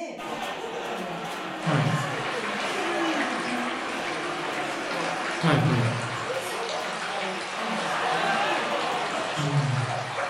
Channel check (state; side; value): identical; both; correlation 1.00